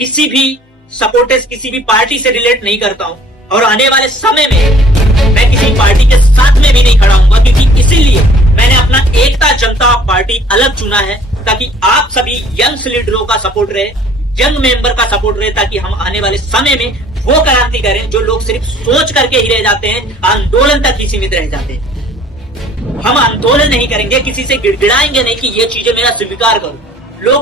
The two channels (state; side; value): normal; both; correlation 0.54